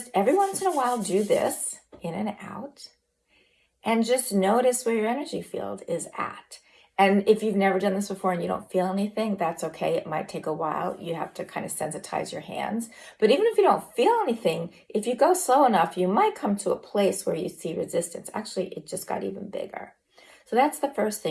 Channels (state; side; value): identical; both; correlation 1.00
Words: every once in a while do this in and out, and just notice where your energy field is at. And if you've never done this before and you don't feel anything, that's okay. It might take a while. You have to kind of sensitize your hands. But even if you don't feel anything, if you go slow enough, you might come to a place where you see resistance. Actually, it just got even bigger. So that's the first